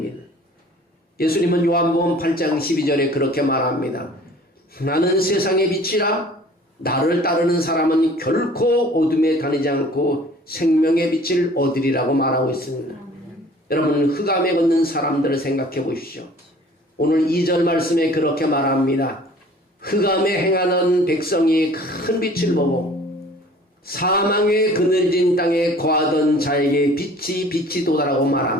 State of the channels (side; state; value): both; normal; correlation 0.50